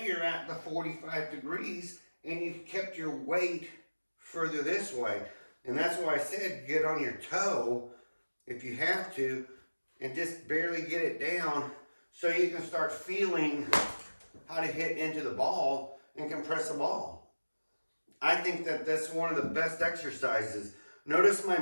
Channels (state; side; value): inverted; both; correlation -1.00